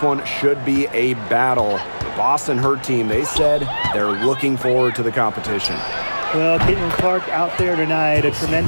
one should be a battle. The Boston Hurt team, they said they're looking forward to the competition. Well, Caitlin Clark out there tonight, a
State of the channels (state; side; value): inverted; both; correlation -1.00